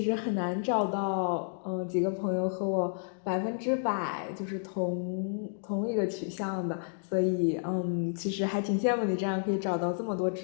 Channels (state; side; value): silent; right; digital silence